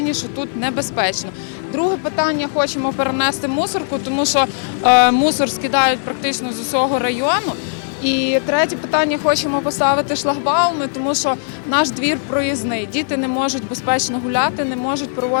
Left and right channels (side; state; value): right; silent; digital silence